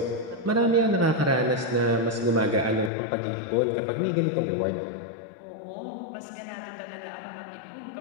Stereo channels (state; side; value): drops out; right; at 2.9 s